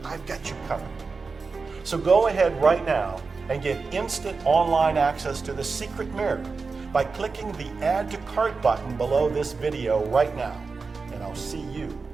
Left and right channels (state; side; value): quieter; left; 4.5 dB